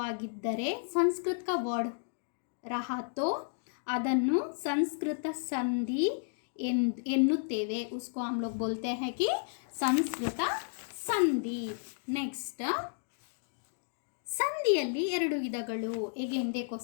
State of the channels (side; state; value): right; silent; digital silence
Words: संस्कृत का वर्ड रहा तो ಅದನ್ನು ಸಂಸ್ಕೃತ ಸಂಧಿ ಎನ್ನುತ್ತೇವೆ, उसको हम लोग बोलते हैं कि ಸಂಸ್ಕೃತ ಸಂಧಿ। ನೆಕ್ಸ್ಟ್ ಸಂಧಿಯಲ್ಲಿ ಎರಡು ವಿಧಗಳು। अगेन देखो